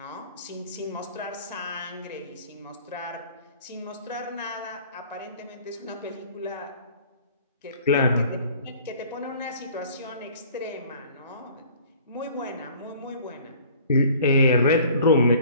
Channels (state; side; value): inverted; both; correlation -0.50